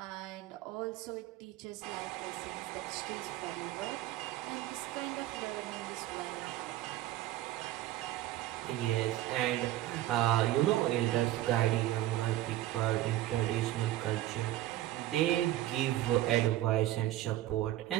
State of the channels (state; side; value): quieter; left; 14.6 dB